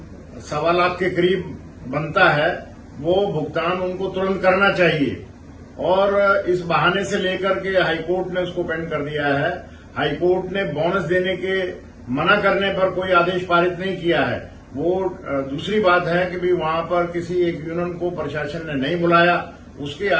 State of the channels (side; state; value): both; identical; correlation 1.00